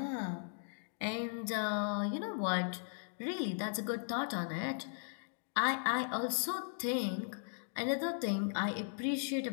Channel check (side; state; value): right; silent; digital silence